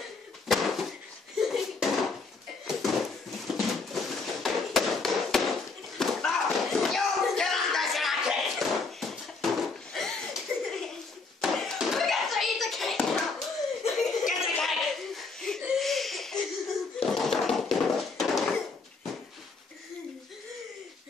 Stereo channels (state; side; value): quieter; right; 4.2 dB